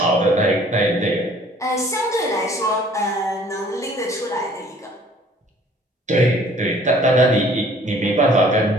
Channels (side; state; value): both; normal; correlation 0.55